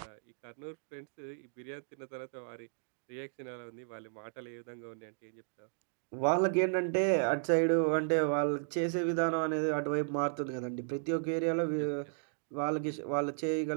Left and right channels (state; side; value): silent; left; digital silence